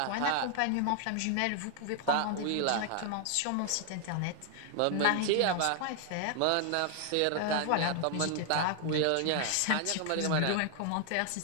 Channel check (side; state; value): both; different; correlation 0.00